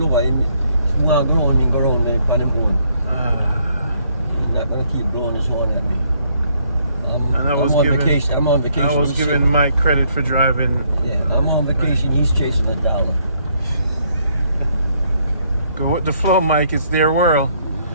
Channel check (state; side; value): inverted; both; correlation -0.69